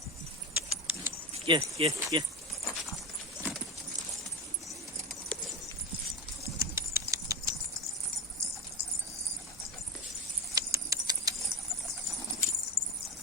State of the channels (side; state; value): both; normal; correlation 0.23